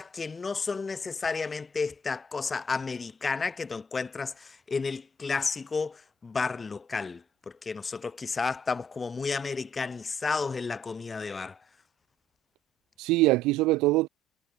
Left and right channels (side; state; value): both; normal; correlation 0.60